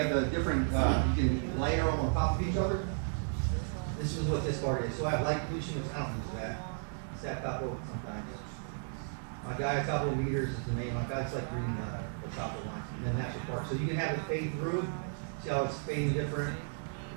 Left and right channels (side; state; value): left; silent; digital silence